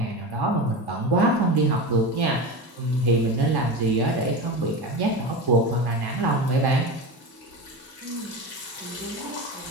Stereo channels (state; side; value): normal; both; correlation 0.25